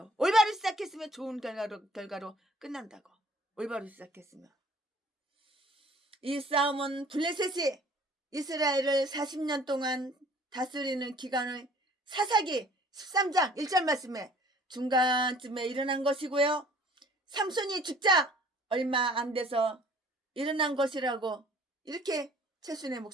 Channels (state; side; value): normal; both; correlation 0.53